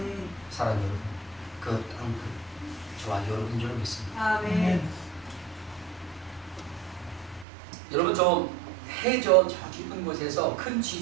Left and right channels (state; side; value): drops out; left; at 7.5 s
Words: 사랑 여러분, 그 땅끝 저와 여러분 줄 믿습니다. 아멘. 여러분, 좀 해저 저 깊은 곳에서 큰